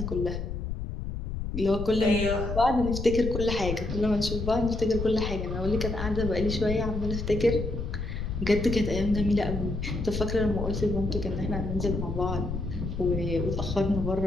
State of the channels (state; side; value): noise; left; rumble, 5 dB below the sound